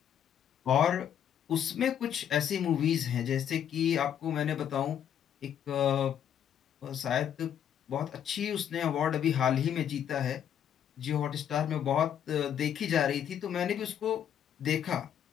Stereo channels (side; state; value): right; quieter; 9.4 dB